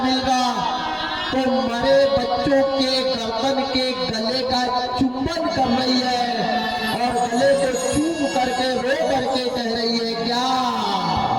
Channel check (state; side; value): identical; both; correlation 1.00